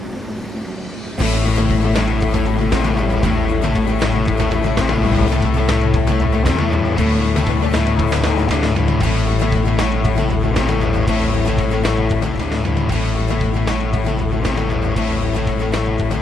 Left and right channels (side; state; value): both; normal; correlation 0.83